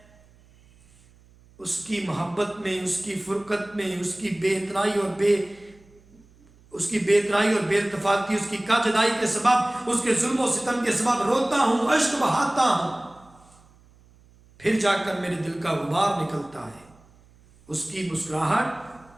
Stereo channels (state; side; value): noise; right; hum, 28 dB below the sound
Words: اس کی محبت میں، اس کی فرقت میں، اس کی بے اتنائی اور بے اتفاقی، اس کی کا جدائی کے سبب، اس کے ظلم و ستم کے سبب روتا ہوں، اشک بہاتا ہوں، پھر جا کر میرے دل کا غبار نکلتا ہے۔ اس کی مسکراہٹ